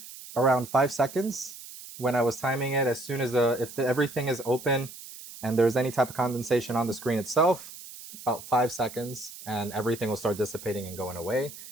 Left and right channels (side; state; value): right; noise; hiss, 15 dB below the sound